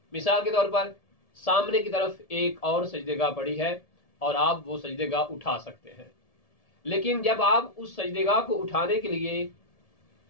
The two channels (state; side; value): late; right; 1.7 ms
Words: मिसाल के तौर पर सामने की तरफ एक और सजदेगाह पड़ी है और आप वो सजदेगाह उठा सकते हैं, लेकिन जब आप उस सजदेगाह को उठाने के लिए